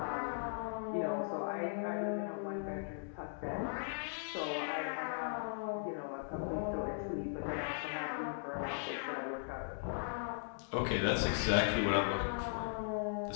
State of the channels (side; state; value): right; silent; digital silence